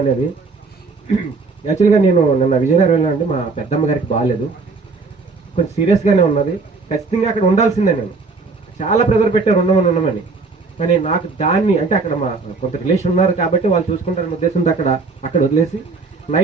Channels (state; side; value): quieter; left; 4.2 dB